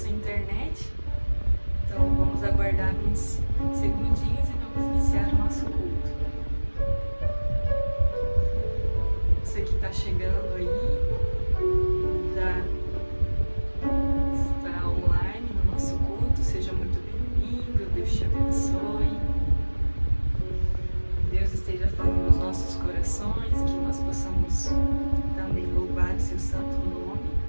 à internet. Então vamos aguardar uns segundinhos e vamos iniciar o nosso culto. Você que está chegando aí, já está online no nosso culto, seja muito bem-vindo, Deus te abençoe. Deus esteja falando nos nossos corações, que nós possamos também louvar o seu santo nome.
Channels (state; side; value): inverted; both; correlation -1.00